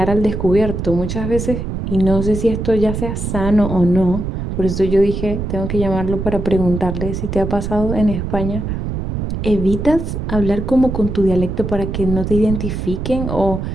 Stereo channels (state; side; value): noise; right; rumble, 4 dB below the sound